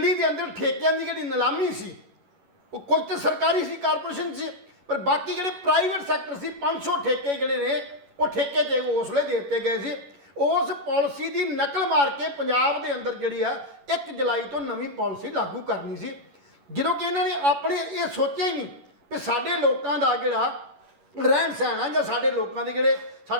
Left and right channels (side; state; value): left; late; 11 ms